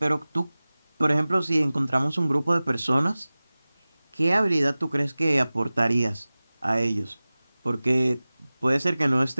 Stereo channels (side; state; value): both; inverted; correlation -0.98